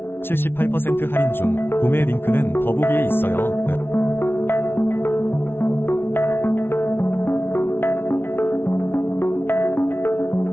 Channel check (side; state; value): right; late; 0.11 ms